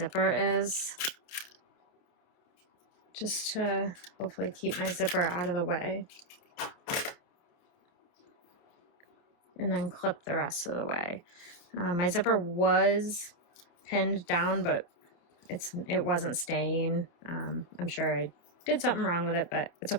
is, just to hopefully keep my zipper out of the way. And then clip the rest of the way. My zipper was pinned down, but it wasn't staying. I'm sure I did something wrong with it, but it's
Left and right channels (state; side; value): late; right; 29 ms